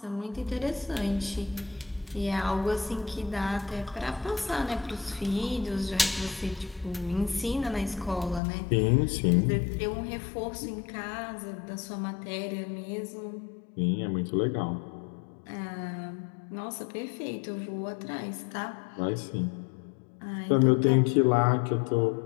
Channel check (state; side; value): drops out; right; at 8.4 s